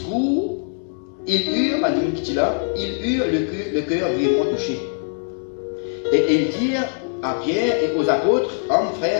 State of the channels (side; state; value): right; silent; digital silence